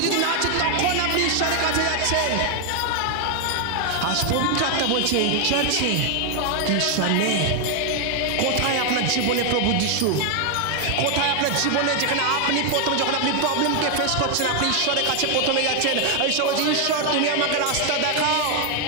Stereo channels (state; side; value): different; both; correlation 0.00